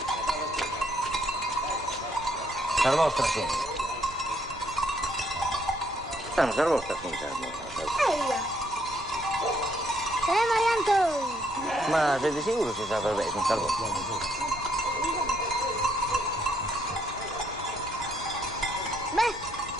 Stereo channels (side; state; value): right; noise; rumble, 20 dB below the sound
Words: Sar vostra, sì. Non sar vostra, sì, Eia! Marianto! Ma sei di sicuro si sa per me, non sar vostra?